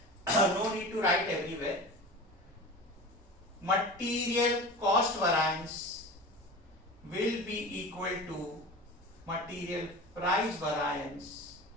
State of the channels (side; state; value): both; normal; correlation 0.33